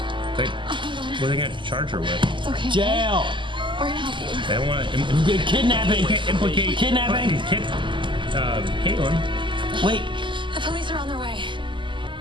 Wait, what are they going to charge her with? It's okay. Jail. We're gonna help you. They don't want to Kidnapping. implicate Kidnapping. Caitlin. Wait. The police are on their way.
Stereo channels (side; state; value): left; late; 0.24 ms